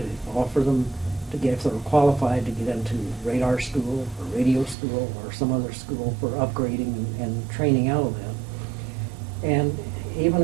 offer them to get, if they were qualified, to get into radar school or radio school or some other school for upgrading and training out of that. And even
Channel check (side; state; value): left; drops out; at 4.8 s